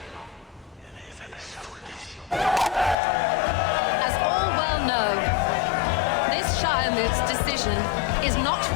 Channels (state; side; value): drops out; right; at 3.0 s